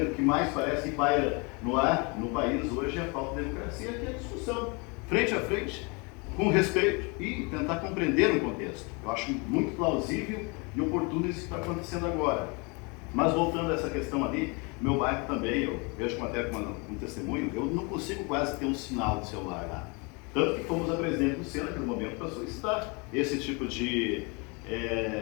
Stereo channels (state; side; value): quieter; right; 30.5 dB